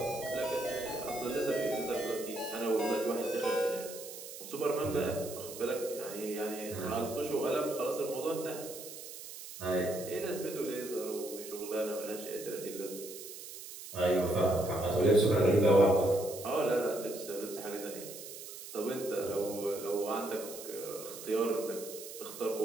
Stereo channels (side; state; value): right; noise; hiss, 12 dB below the sound